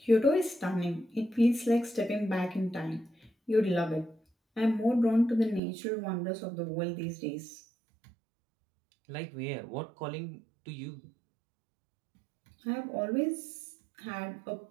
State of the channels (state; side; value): drops out; left; at 5.6 s